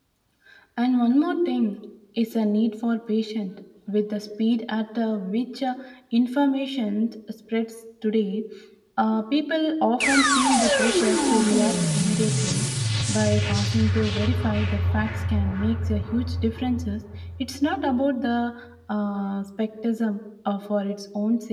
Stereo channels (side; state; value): both; identical; correlation 1.00